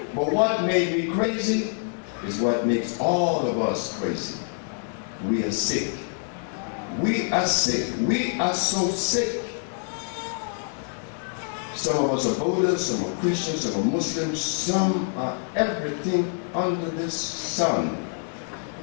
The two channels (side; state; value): right; silent; 61 dB below the other